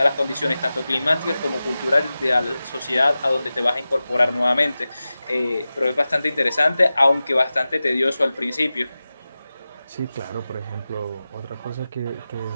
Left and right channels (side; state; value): both; inverted; correlation -0.95